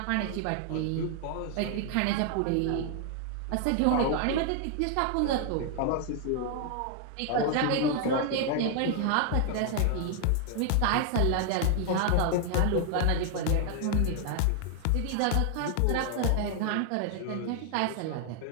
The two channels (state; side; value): different; both; correlation 0.00